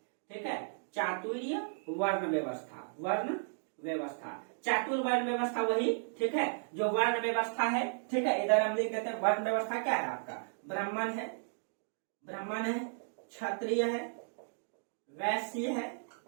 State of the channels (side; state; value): left; silent; digital silence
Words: ठीक है, चातुर्य वर्ण व्यवस्था, वर्ण व्यवस्था, चातुर्वर्ण व्यवस्था वही। ठीक है, जो वर्ण व्यवस्था है। ठीक है, इधर हम लिख देते हैं वर्ण व्यवस्था क्या है आपका, ब्राह्मण है, ब्राह्मण है, क्षत्रिय है, वैश्य है